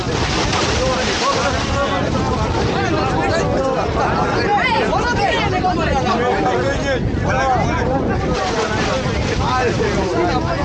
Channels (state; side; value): identical; both; correlation 1.00